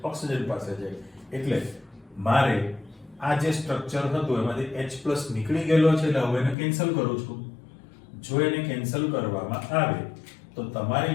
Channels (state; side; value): drops out; right; at 6.6 s